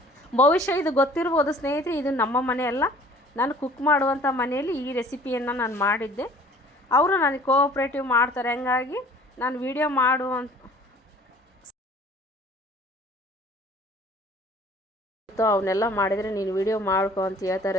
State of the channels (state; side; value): normal; both; correlation 0.51